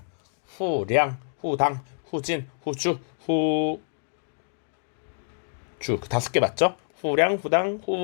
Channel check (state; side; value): silent; right; digital silence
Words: 후량, 후당, 후진, 후주, 후주, 그 5개 맞죠? 후량, 후당,